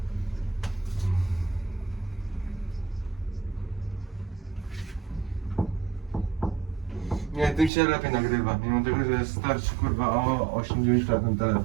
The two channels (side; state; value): left; drops out; at 7.7 s